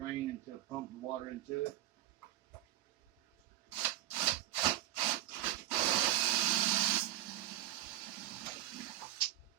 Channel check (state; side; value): quieter; left; 14.3 dB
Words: and to pump the water into it.